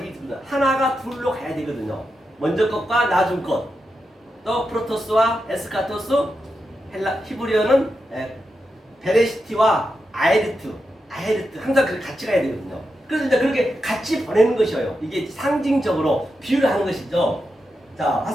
때문에 하나가 둘로 가야 되거든요. 먼저 것과 나중 것, 또 프로토스와 에스카토스, 히브리어는 베레시티와 아에르트 항상 그렇게 같이 가야 되거든요. 그래서 이제 그렇게 같이 보내는 것이에요. 이게 상징적으로 비유를 하는 것이죠. 자,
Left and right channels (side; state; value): both; normal; correlation 0.87